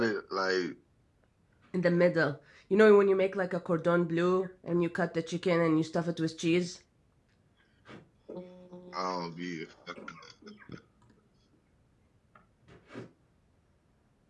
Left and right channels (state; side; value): identical; both; correlation 1.00